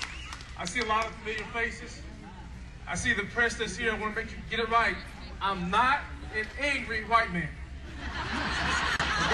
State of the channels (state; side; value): identical; both; correlation 1.00